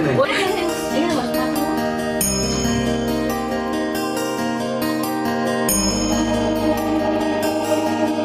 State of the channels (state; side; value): identical; both; correlation 1.00